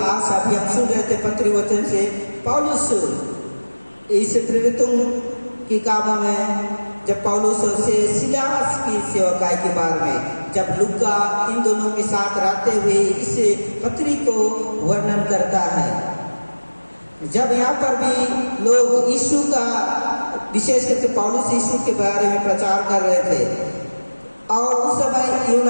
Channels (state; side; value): inverted; both; correlation -1.00